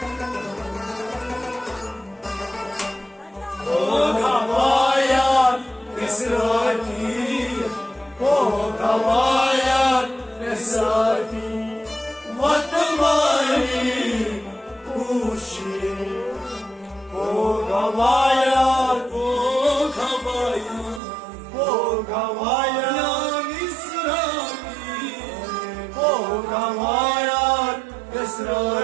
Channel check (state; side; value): drops out; left; at 21.0 s